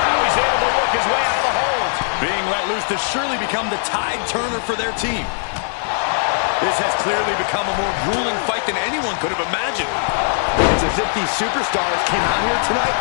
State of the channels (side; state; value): right; silent; digital silence